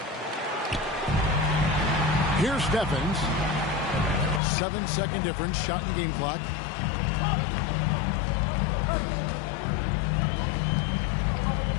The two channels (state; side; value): drops out; right; at 4.4 s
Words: Here's Steffens. 7-second difference. Shot and game clock.